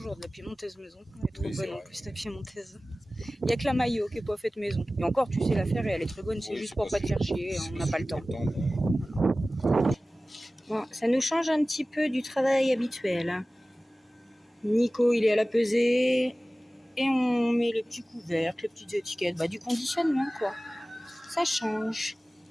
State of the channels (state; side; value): normal; both; correlation 0.97